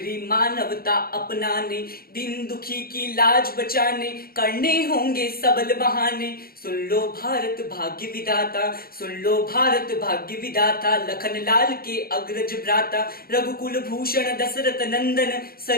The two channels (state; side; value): late; right; 0.44 ms